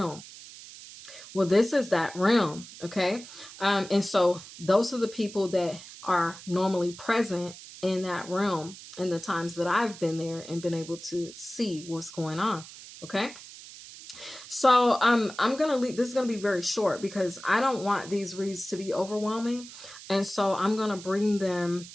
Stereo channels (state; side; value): noise; right; hiss, 16 dB below the sound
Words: Well, this is that realm, okay? And so those are the people that are normally present in that realm in the times that I've been there and been able to see what's going on, okay? So I'm gonna leave. This is gonna be very short because I don't want these reads to be overwhelming, and so I'm gonna bring them